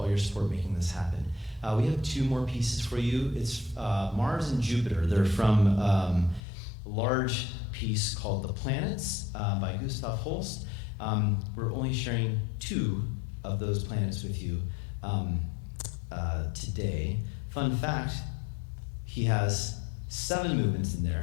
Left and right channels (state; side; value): drops out; right; at 6.4 s